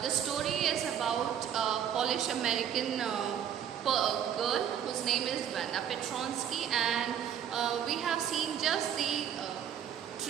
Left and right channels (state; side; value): quieter; left; 9.2 dB